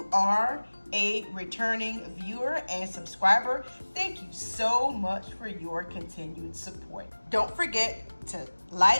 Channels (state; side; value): inverted; both; correlation -1.00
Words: are a returning viewer and subscriber, thank you so much for your continued support. Don't forget to